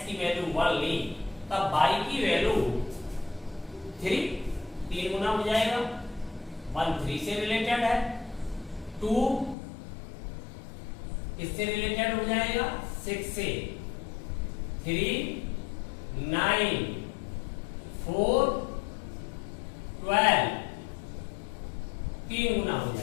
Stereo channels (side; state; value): right; drops out; at 9.6 s